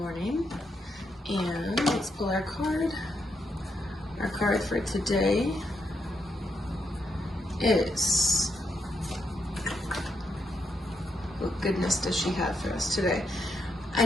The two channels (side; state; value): both; normal; correlation 0.80